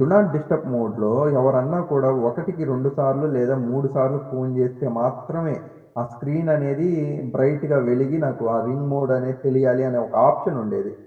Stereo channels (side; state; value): both; identical; correlation 1.00